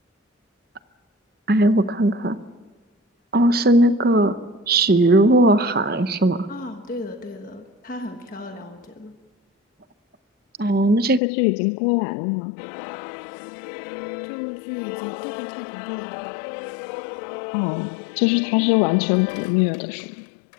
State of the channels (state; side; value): drops out; right; at 11.2 s